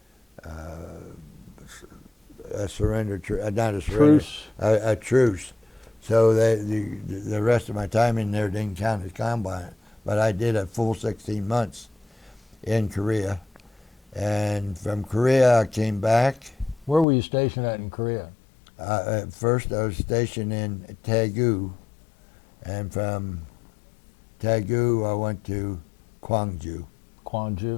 surrender, not a surrender, Truce. a truce. So the rest of my time in there didn't count as combat, but I did a full 16 months in Korea. And from Korea, I came back. Where were you stationed at in Korea? At first, I was stationed in Daegu, and from Daegu, I went to Gwangju.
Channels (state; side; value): drops out; right; at 17.1 s